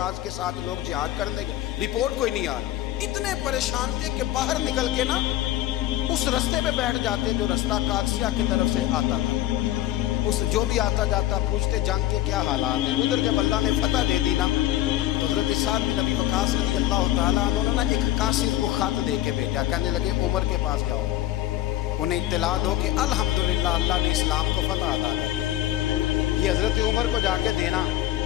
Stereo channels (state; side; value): quieter; right; 14.1 dB